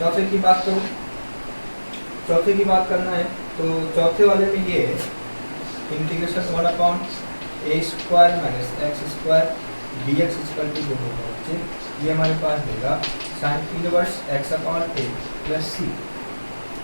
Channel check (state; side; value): inverted; both; correlation -1.00